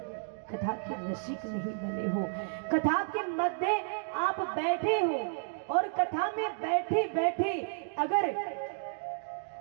कथा के रसिक नहीं बने हो। कथा के मध्य आप बैठे हो और कथा में बैठे बैठे अगर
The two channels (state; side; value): silent; left; digital silence